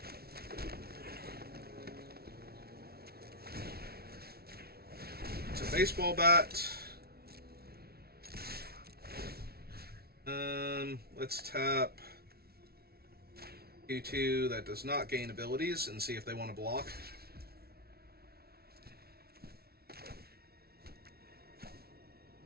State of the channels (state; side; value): late; left; 0.45 ms